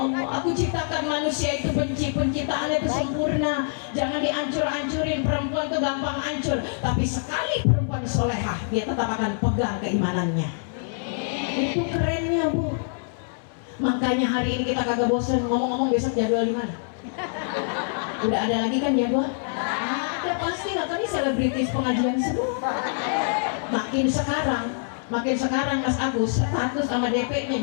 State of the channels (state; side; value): silent; right; 62 dB below the other